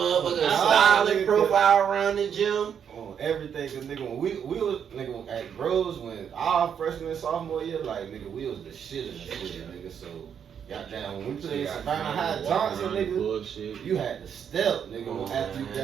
Oh, styling nigga. profile around the gym. On everything, cause nigga, when we was nigga at Groves when our freshman and sophomore year, like nigga, we was the shit in the city, nigga. So goddamn, when we played Savannah High Johnson, nigga, Bullshit. you had to step, nigga, Oh, after you man.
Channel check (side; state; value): left; quieter; 8.0 dB